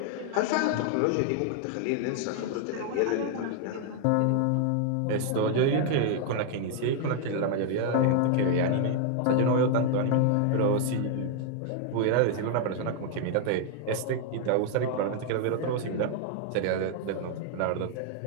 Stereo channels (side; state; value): both; different; correlation 0.00